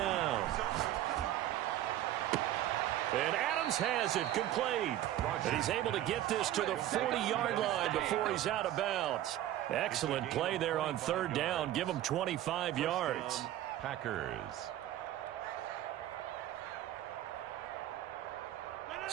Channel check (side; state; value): left; quieter; 13.2 dB